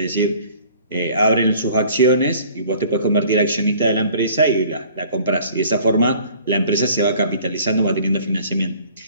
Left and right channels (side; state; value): both; inverted; correlation -0.52